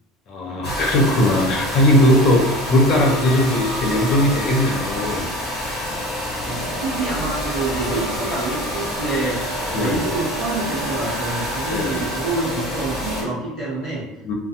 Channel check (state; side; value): normal; both; correlation 0.35